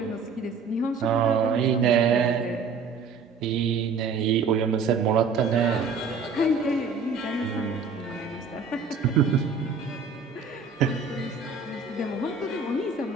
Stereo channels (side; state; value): left; quieter; 4.9 dB